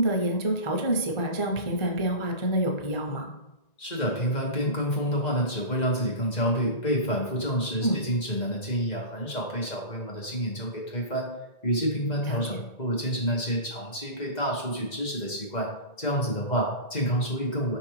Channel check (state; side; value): late; right; 1.9 ms